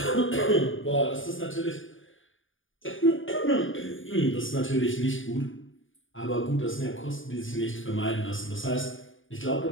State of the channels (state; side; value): late; right; 0.57 ms